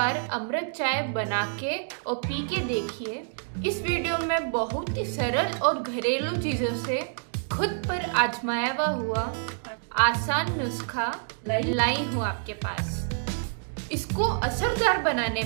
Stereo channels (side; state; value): left; silent; digital silence